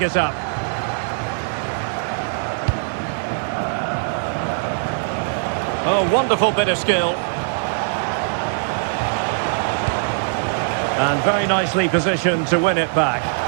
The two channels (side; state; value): left; silent; digital silence